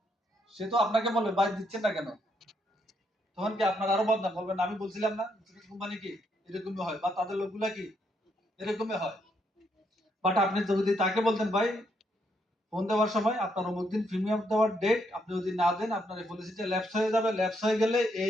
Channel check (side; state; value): both; normal; correlation 0.75